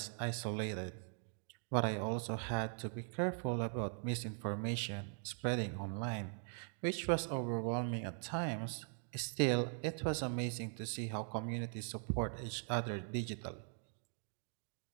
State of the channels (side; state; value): left; silent; 50 dB below the other